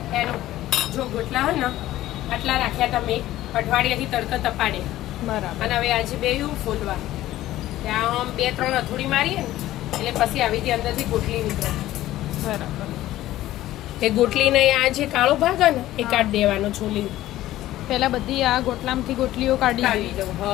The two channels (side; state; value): right; quieter; 14.9 dB